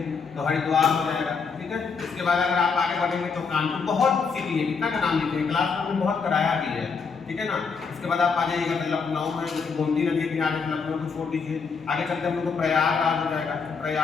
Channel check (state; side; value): quieter; right; 5.3 dB